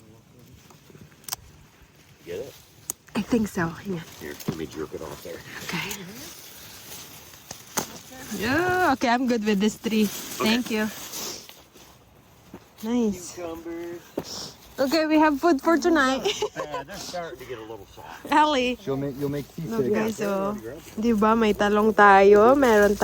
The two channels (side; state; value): both; identical; correlation 1.00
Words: Get it? I think so. Yeah. Here, let me jerk it off there. Okay. Yeah, okay, I'm good with this three. Thank you. Nice. Cucumbers. Okay, we have food for tonight. Yeah, they're starting to get a little soft. Ellie. You'll make Look guys, so, di ba may talong tayo, meron